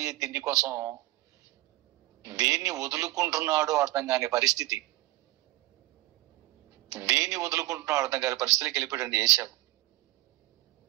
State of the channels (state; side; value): quieter; left; 18.8 dB